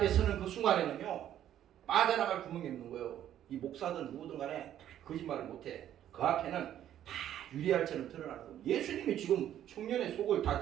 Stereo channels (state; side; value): quieter; left; 11.2 dB